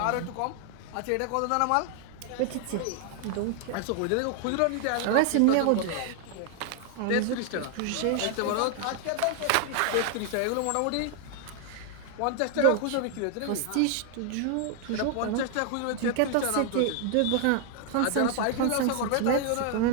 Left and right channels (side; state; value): both; different; correlation 0.00